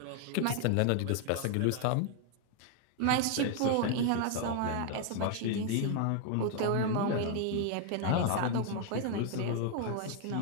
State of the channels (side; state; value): both; different; correlation 0.00